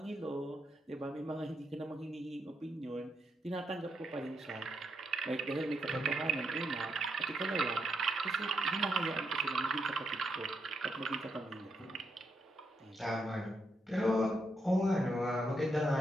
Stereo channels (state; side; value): normal; both; correlation 0.80